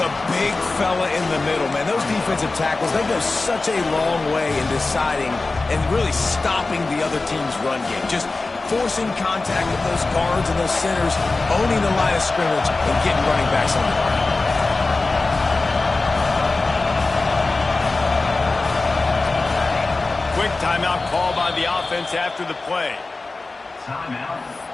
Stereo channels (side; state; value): right; quieter; 3.5 dB